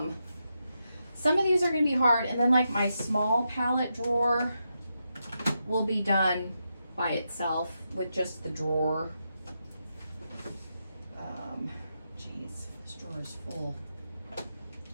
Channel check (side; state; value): both; inverted; correlation -0.85